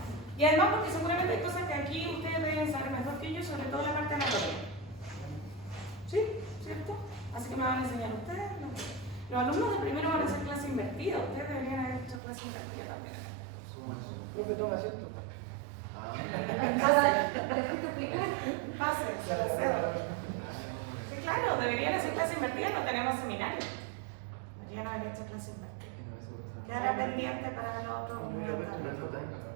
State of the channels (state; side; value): drops out; left; at 12.2 s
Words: Y además porque seguramente hay cosas que aquí ustedes deben saber mejor que yo, sobre todo la parte anatómica. ¿Sí? ¿Cierto? Así que me van a enseñar ustedes. Los alumnos de primero van a hacer clase invertida. Ustedes deberían haber hecho clase invertida también. Profe, toma asiento. Pase, se la cedo. Sí, claro, deberían hacer clase invertida, no tenemos seminario. Deberían haber hecho clase invertida. Quedará pendiente para el otro. Una